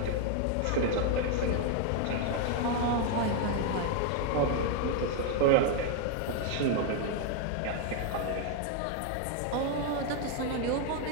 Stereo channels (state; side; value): different; both; correlation 0.01